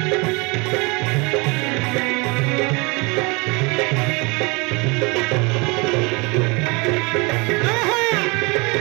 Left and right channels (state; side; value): quieter; left; 28.1 dB